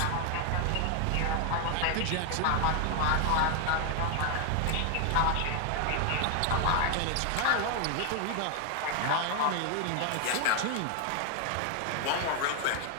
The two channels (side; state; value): both; different; correlation 0.00